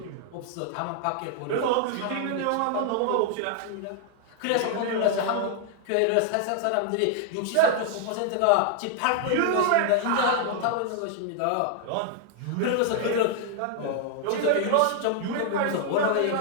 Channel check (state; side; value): different; both; correlation 0.00